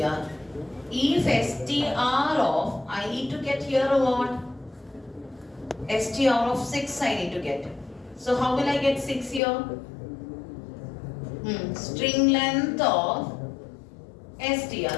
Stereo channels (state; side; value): drops out; right; at 9.4 s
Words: If str of, I need to get here what? str of 6 I need to get. So how will I get 6 here? String length of str.